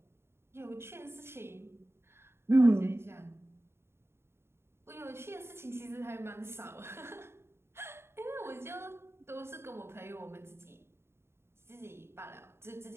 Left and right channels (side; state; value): left; late; 0.12 ms